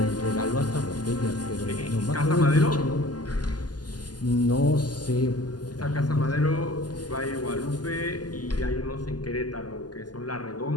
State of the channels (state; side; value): late; right; 0.70 ms